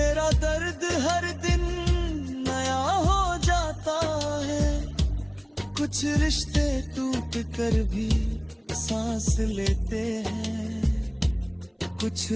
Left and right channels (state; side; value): identical; both; correlation 1.00